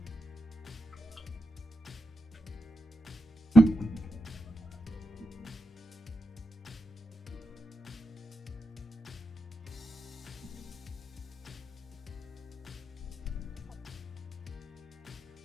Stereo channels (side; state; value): both; normal; correlation 0.87